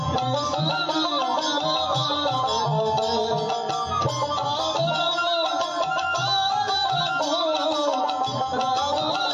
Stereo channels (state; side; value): identical; both; correlation 1.00